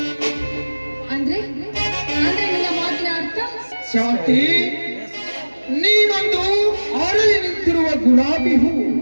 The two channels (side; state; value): both; inverted; correlation -1.00